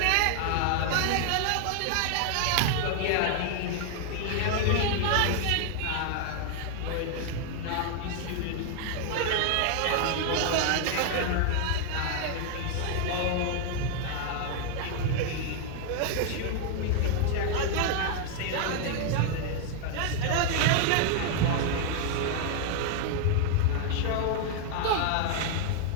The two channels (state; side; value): different; both; correlation 0.00